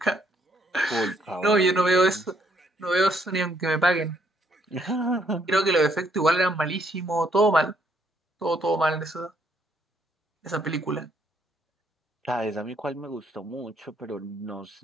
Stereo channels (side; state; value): both; normal; correlation 0.70